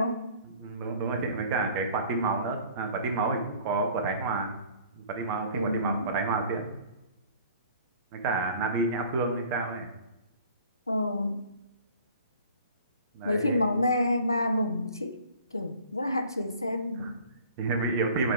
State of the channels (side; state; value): both; inverted; correlation -0.49